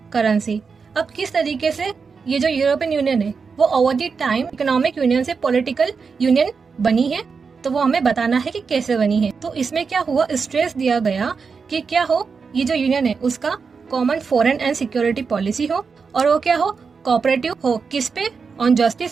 currency. अब किस तरीके से ये जो European Union है वो over the time economic union से political union बनी है, तो वो हमें बताना है कि कैसे बनी है। तो इसमें क्या हुआ, स्ट्रेस दिया गया कि क्या हो, ये जो यूनियन है उसका common foreign and security policy हो, और वो क्या हो, कोऑपरेटिव हो, किस पे, on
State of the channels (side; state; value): left; quieter; 5.3 dB